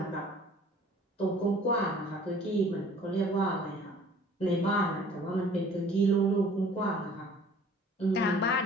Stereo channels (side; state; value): both; normal; correlation 0.51